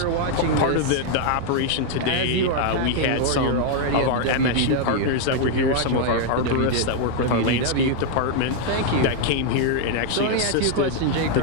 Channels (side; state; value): both; different; correlation 0.00